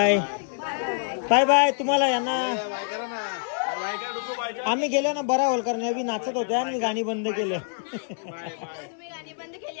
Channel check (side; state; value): right; silent; digital silence